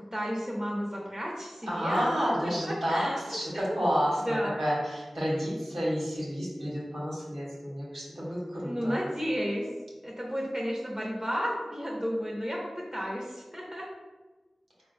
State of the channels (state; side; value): normal; both; correlation 0.96